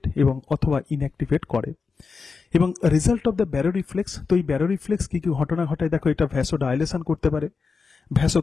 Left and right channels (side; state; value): right; quieter; 4.9 dB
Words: এবং অথবা ইনঅ্যাক্টিভেট করে। এবং result of the baro reflex, তো এই ব্যারো রিফ্লেক্স কি কি ঘটনা ঘটায় দেখো, এটা ভ্যাসোডাইলেশন করতে পারে,